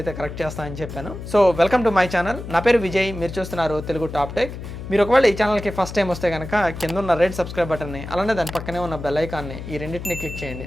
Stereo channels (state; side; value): noise; left; hum, 10 dB below the sound